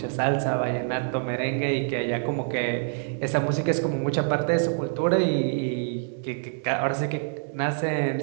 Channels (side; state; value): left; silent; digital silence